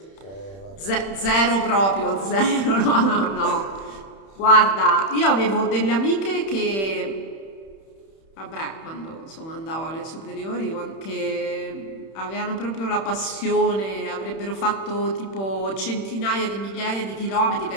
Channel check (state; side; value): late; right; 31 ms